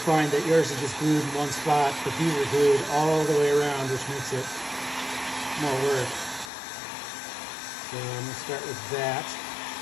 that yours is just glued in one spot, but these are glued all the way around, which makes it more work. So I'm gonna start with that.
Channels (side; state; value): right; drops out; at 6.5 s